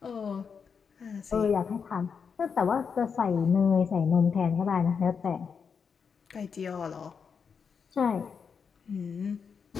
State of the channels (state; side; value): quieter; right; 6.1 dB